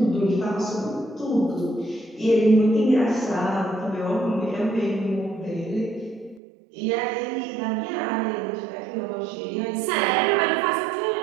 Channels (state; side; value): drops out; left; at 6.4 s